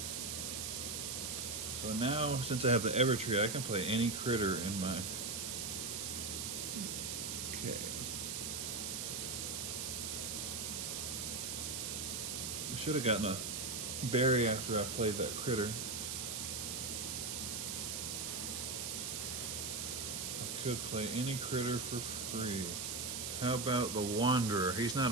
So now, since I have the Evertree, I can play any critter in my... Okay. I should have gotten a berry after I played that critter. I could play any critter for free. How about the Wanderer? He's not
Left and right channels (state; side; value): noise; right; hiss, 3 dB below the sound